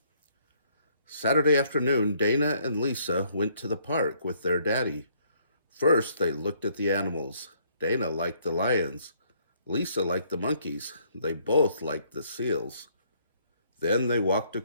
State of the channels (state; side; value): inverted; both; correlation -0.66